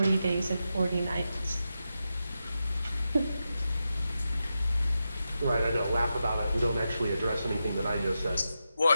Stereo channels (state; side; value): inverted; both; correlation -0.89